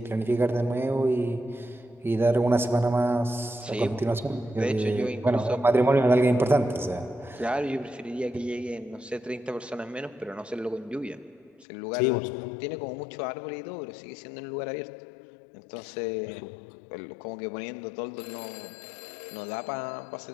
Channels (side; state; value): right; drops out; at 11.7 s